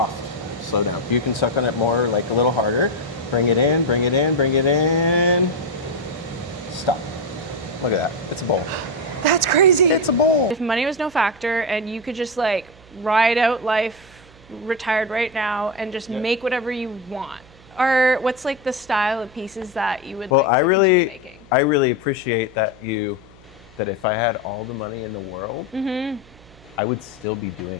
Slow down. You can suck on it more, like a little harder. Bring it in, bring it in, bring it in. Stop. Look at that. It's a bowl. That's crazy. It's a bowl. If money was no factor and you could just like ride out life, retired right now, and just make whatever you want, or what's like the style of pieces that you would Well, like I to really, keep making? I really appreciate that that if I had all the money in the world, I would still be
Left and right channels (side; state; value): right; noise; hum, 24 dB below the sound